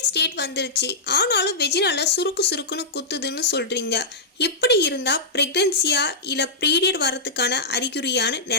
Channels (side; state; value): right; quieter; 3.1 dB